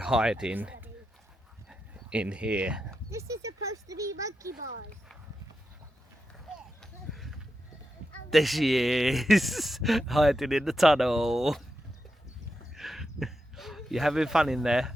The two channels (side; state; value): both; normal; correlation 0.87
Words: in here. This is supposed to be monkey bars. There she is, hiding in the tunnel. You having fun in there?